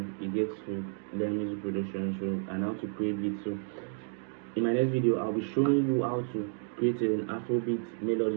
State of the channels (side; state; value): left; silent; 57 dB below the other